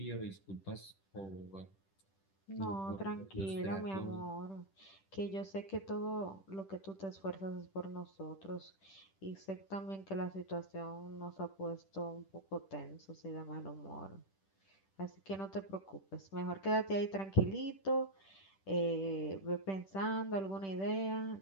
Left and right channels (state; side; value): late; right; 10 ms